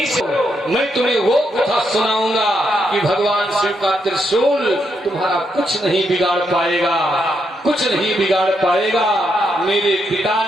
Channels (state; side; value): normal; both; correlation 0.79